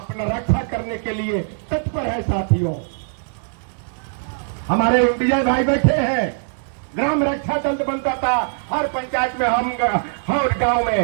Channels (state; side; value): silent; left; digital silence